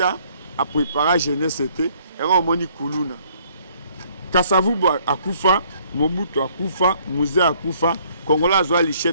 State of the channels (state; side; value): inverted; both; correlation -0.63